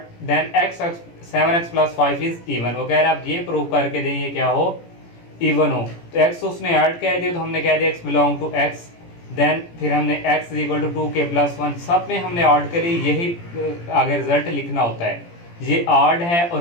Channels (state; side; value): late; right; 17 ms